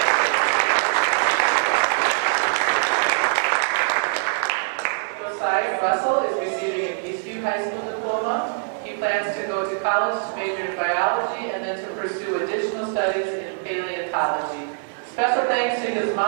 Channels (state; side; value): silent; left; 63 dB below the other